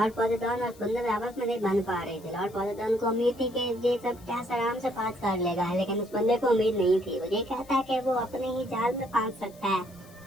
पोतीतान और बंदे भी आपस में नहीं बन पा रहे थे। लॉर्ड पोतीतान को उम्मीद थी कि ये सब टेस्ट आराम से पास कर लेगा, लेकिन उस बंदे को उम्मीद नहीं थी। वो ये कहता है कि वो अपने ही जाल में पास सकता है।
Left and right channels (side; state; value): left; noise; hiss, 25 dB below the sound